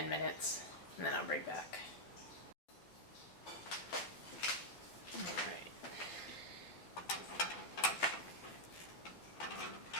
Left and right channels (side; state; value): right; late; 12 ms